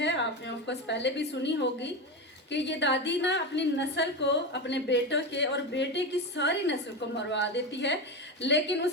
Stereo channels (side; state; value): both; normal; correlation 0.18